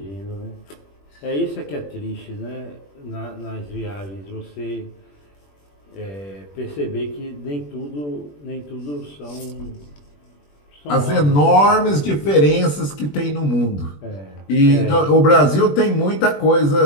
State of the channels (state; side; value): late; right; 21 ms